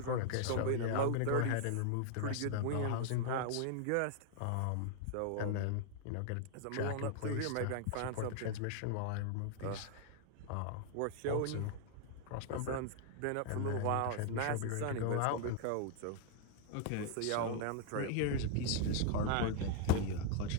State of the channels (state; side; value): different; both; correlation 0.00